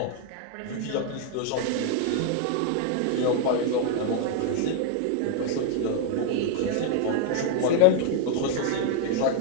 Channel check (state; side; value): different; both; correlation 0.00